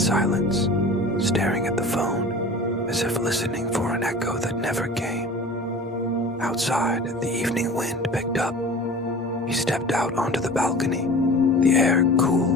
staring at the phone, as if listening for an echo that never came. Outside, the evening wind picked up. He stepped out onto the balcony, the air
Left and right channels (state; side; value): normal; both; correlation 0.40